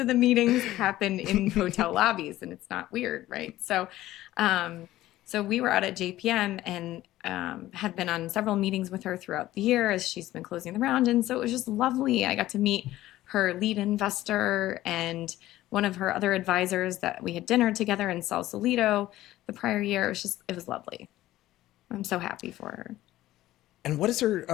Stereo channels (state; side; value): quieter; right; 15.3 dB